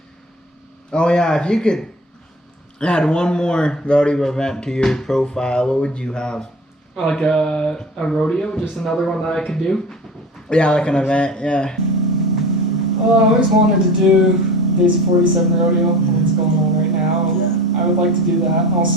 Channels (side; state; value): both; normal; correlation 0.37